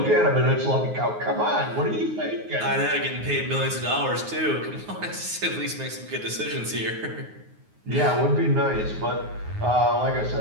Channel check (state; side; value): late; left; 9.5 ms